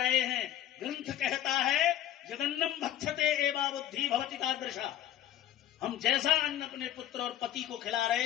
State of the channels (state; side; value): quieter; right; 11.8 dB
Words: हैं। ग्रंथ कहता है जगन्नम भक्षते एवा बुद्धि भवति तादृशा। हम जैसा अन्न अपने पुत्र और पति को खिला रहे